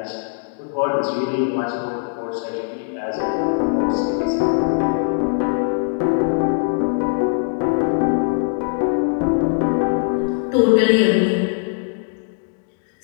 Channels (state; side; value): silent; right; 61 dB below the other